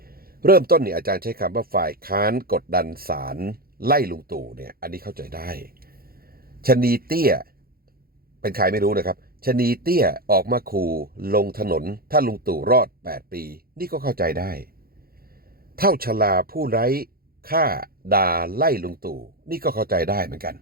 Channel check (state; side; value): late; left; 0.44 ms